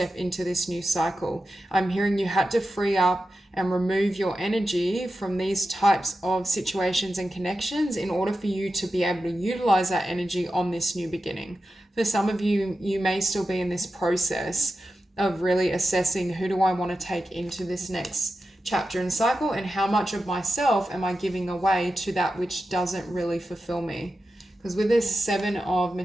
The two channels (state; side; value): normal; both; correlation 0.91